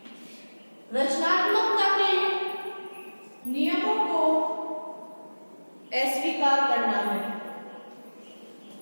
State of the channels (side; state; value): both; inverted; correlation -1.00